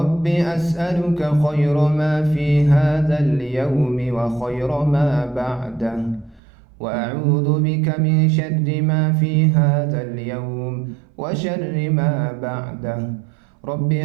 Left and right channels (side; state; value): left; drops out; at 6.4 s